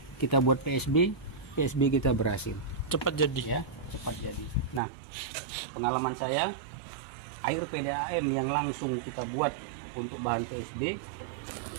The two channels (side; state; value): left; drops out; at 4.8 s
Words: Kita buat PSB kita berhasil. Cepat jadi ya, cepat jadi. Nah, pengalaman saya, air PDAM yang langsung kita buat untuk bahan PSB